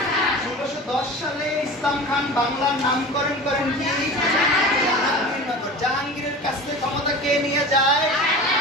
1610 সালে ইসলাম খান বাংলার নামকরণ করেন কি? জাহাঙ্গীরনগর। জাহাঙ্গীরের কাছ থেকে ক্ষমতা কে নিয়ে যায়?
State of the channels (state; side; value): normal; both; correlation 0.35